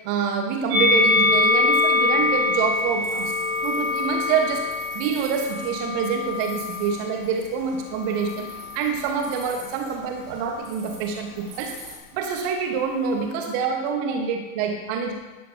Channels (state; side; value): late; left; 39 ms